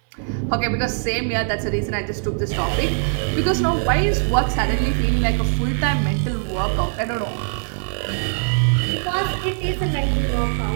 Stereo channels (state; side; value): silent; left; 58 dB below the other